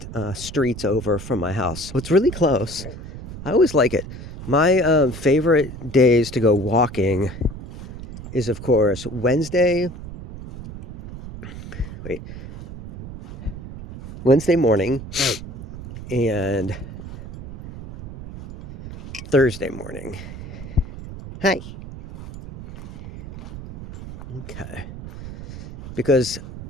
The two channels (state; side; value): noise; right; rumble, 11 dB below the sound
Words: street's over from my house. So it's really close. I always like it. My favorite days to go walking is, of course, Wednesday morning and Thursday morning. Hi. Okay. Because